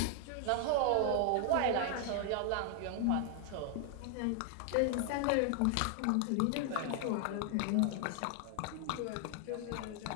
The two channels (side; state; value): both; different; correlation 0.00